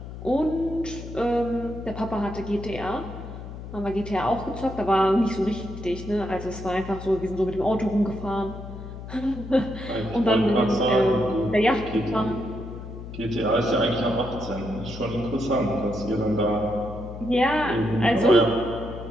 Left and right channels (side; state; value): left; noise; hum, 11 dB below the sound